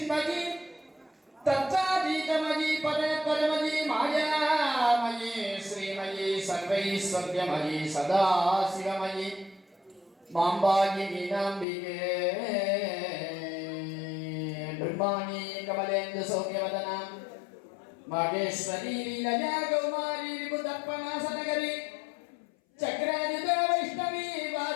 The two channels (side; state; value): right; drops out; at 11.7 s